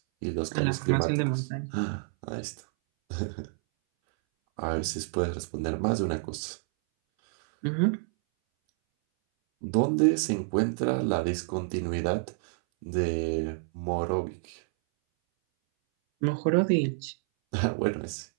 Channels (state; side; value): silent; left; 59 dB below the other